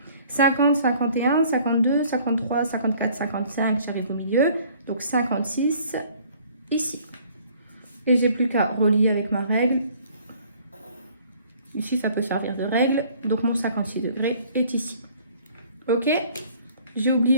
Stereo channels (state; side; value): inverted; both; correlation -0.56